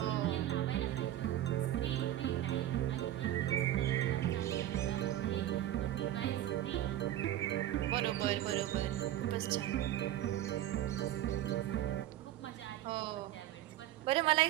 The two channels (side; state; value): left; quieter; 13.0 dB